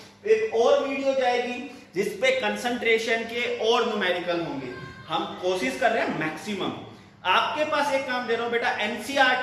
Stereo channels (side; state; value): both; identical; correlation 1.00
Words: एक और वीडियो जाएगी जिसपे कंसंट्रेशन के और न्यूमेरिकल होंगे। हम कोशिश कर रहे हैं मैक्सिमम। आपके पास एक काम दे रहा हूं बेटा,